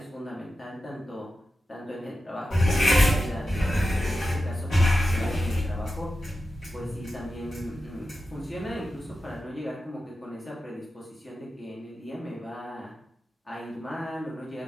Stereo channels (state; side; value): normal; both; correlation 0.91